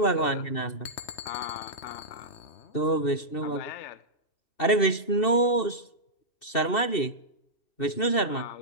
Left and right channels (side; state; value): right; late; 2.7 ms